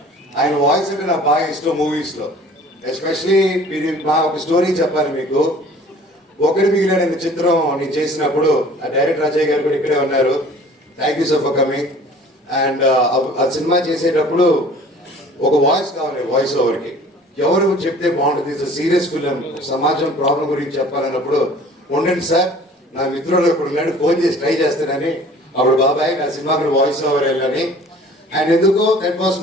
ఆయన వాయిస్ అంటే నాకు బాగా ఇష్టం మూవీస్ లో. ఎస్పెషలీ మీరు మా ఒక స్టోరీ చెప్పాలి మీకు. ఒకటి మిగిలిన చిత్రం నేను చేసినప్పుడు ఆ డైరెక్టర్ అజయ్ గారు కూడా ఇక్కడే ఉన్నారు. Thank you so for coming. And ఆ సినిమా చేసేటప్పుడు ఒక వాయిస్ కావాలి, వాయిస్ ఓవర్కి ఎవరు చెప్తే బాగుంటుంది, ఇట్స్ సీరియస్ ఫిలిం, సమాజం ప్రాబ్లం గురించి చెప్పాలన్నప్పుడు ఉండండి సార్ నా మిత్రుడు ఇప్పుడు ఉన్నాడు ఫోన్ చేసి ట్రై చేస్తానని, అప్పుడు బాబాయ్ నా సినిమాకి వాయిస్ ఓవర్ వెళ్ళని. అండ్ ఎందుకో that was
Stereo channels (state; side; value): normal; both; correlation 0.49